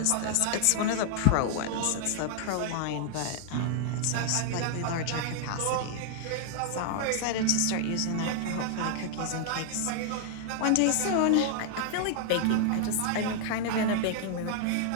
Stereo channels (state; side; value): different; both; correlation 0.00